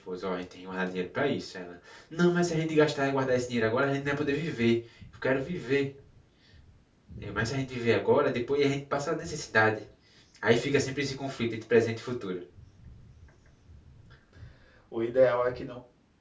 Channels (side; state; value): both; identical; correlation 1.00